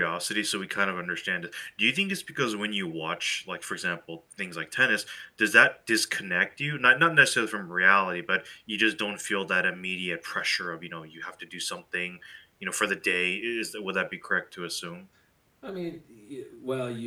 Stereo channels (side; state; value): both; identical; correlation 1.00